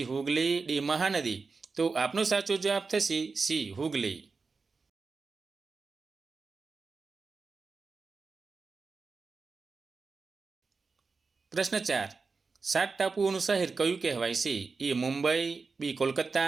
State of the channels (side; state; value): left; quieter; 4.5 dB